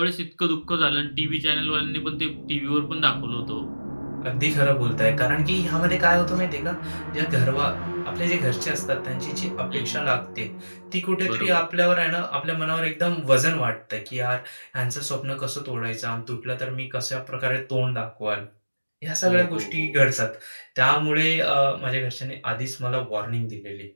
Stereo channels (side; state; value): both; inverted; correlation -1.00